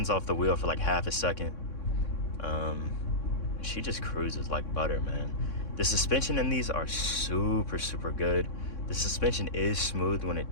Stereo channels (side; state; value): right; late; 3.6 ms